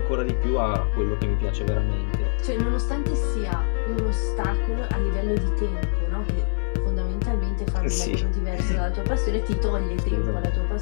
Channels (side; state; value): right; silent; digital silence